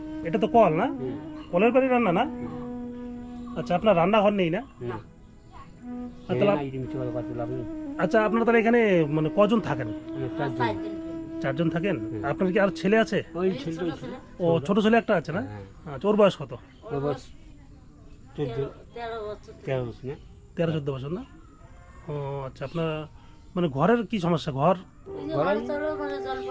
এটা তো কল না? হুম, কলের বাড়ি রান্না না? আচ্ছা, আপনার রান্নাঘর নেই না? না। আর তাহলে এই জিনিস কথা লাভ নেই। আচ্ছা, আপনারা তাহলে এখানে মানে কজন থাকেন? আমি 4 জন। 4 জন থাকেন? হুম। আপনার কি আর ছেলে আছে? ওই ছেলেটা ছিল। ও ছোট ছেলে একটা আছে না? হ্যাঁ। আচ্ছা, ওর বয়স কত? ওর বয়স 13 বছর না? 13-14 বছর না? ও আচ্ছা, আপনার মানে ঘরের কি সমস্যা? ঘর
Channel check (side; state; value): both; identical; correlation 1.00